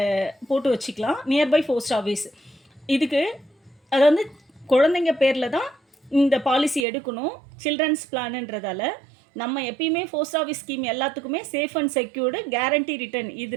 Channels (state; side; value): drops out; left; at 6.9 s